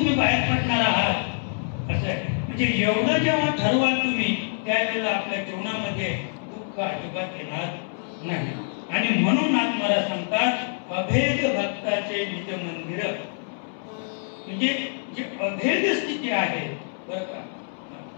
बाहेर पडणार आहात असं आहे. म्हणजे एवढं जेव्हा ठरवाल तुम्ही त्यावेळेला आपल्या जीवनामध्ये दुःख अजिबात येणार नाही. आणि म्हणून नाथ महाराज सांगतात अभेद भक्ताचे निज मंदिर, म्हणजे जी अभेद स्थिती आहे बरं का,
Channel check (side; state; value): right; silent; 61 dB below the other